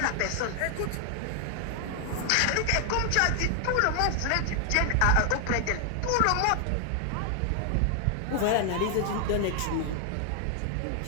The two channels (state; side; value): different; both; correlation 0.00